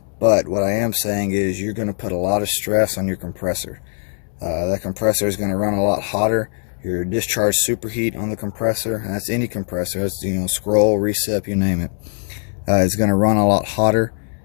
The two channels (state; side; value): silent; right; 58 dB below the other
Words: but what I am saying is you're going to put a lot of stress on your compressor. That compressor is going to run a lot hotter. Your discharge superheat on the compressor, and that's any compressor, that's scroll, recip, you name it, it's going to run a lot hotter,